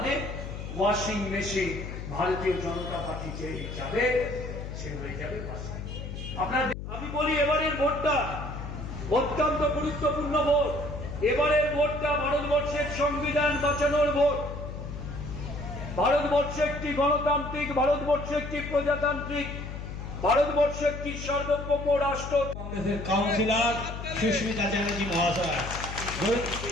ওয়াশিং মেশিন ভারতীয় জনতা পার্টি যে যাবে সে হয়ে যাবে। আপনার আমি বলি এবারের ভোটটা অত্যন্ত গুরুত্বপূর্ণ ভোট। এবারের ভোটটা ভারতবর্ষের সংবিধান বাঁচানোর ভোট। ভারতবর্ষ একটি গণতান্ত্রিক, ভারতবর্ষ একটি প্রজাতান্ত্রিক, ভারতবর্ষ একটি সার্বভৌম রাষ্ট্র। কংগ্রেসের কাউন্সিলর সুস্মিতা চ্যাটার্জি মহাশয়,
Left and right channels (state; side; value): noise; left; hum, 8 dB below the sound